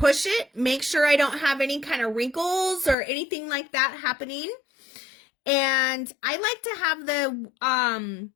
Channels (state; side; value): drops out; right; at 3.0 s